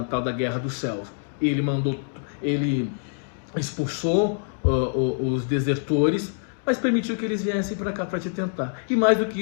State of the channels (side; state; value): right; silent; digital silence